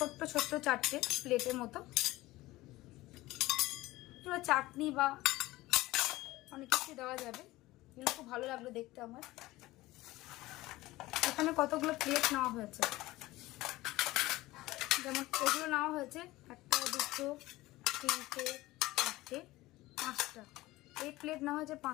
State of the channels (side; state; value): right; quieter; 18.5 dB